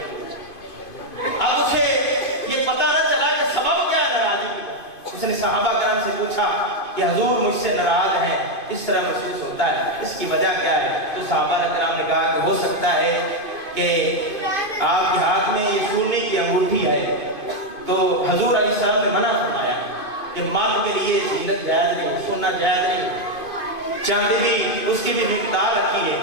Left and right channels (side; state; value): right; late; 2.5 ms